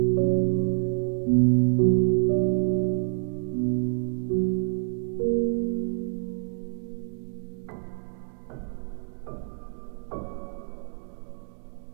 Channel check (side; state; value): left; silent; digital silence